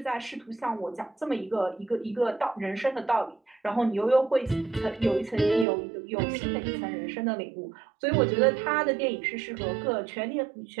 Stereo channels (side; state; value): left; drops out; at 5.7 s